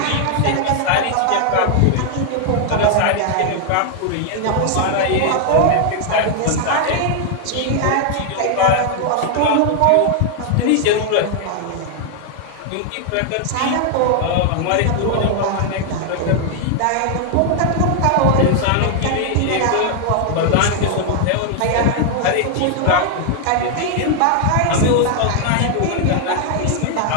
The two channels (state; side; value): different; both; correlation 0.00